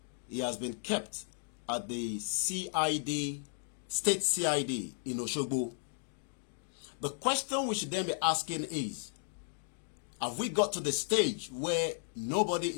he has been kept at the CID, State CID in Osogbo. The question we should then be asking is, have we got to the stage where nobody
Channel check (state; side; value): silent; right; digital silence